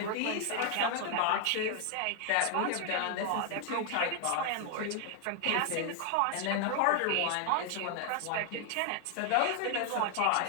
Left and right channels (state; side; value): different; both; correlation 0.00